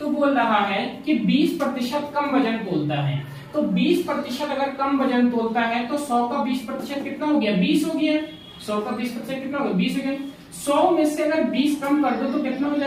बोल रहा है कि 20% कम वजन तोलता है। तो 20% अगर कम वजन तोलता है तो 100 का 20% कितना हो गया? 20 हो गया। 100 का 20% कितना होगा? 20 हो गया। 100 में से अगर 20 कम कर दो तो कितना हो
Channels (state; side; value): identical; both; correlation 1.00